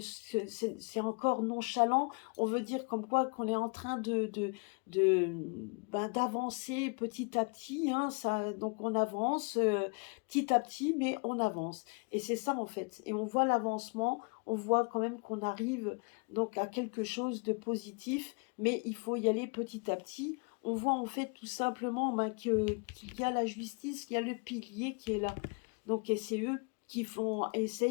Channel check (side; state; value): right; quieter; 35.6 dB